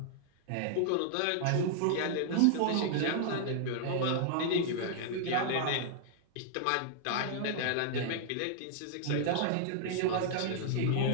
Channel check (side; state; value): both; different; correlation 0.00